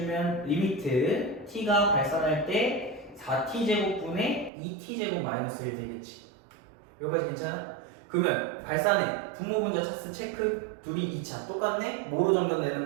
리미트 t가 발산할 때 4t제곱분의 2t제곱 마이너스 1 되겠지. 여기까지 괜찮아? 그러면 발산해. 분모분자 차스 체크. 둘이 2차 똑같네? 뭐로 정답내는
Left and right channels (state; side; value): drops out; left; at 4.5 s